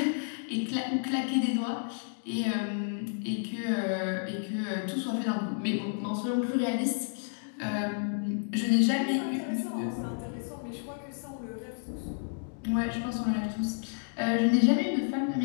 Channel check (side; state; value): right; silent; digital silence